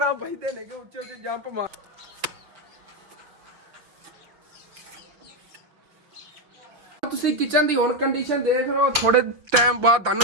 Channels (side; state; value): left; late; 6.1 ms